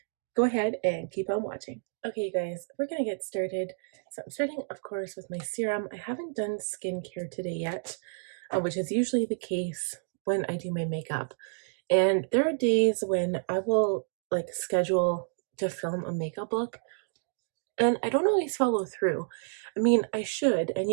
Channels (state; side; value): silent; left; digital silence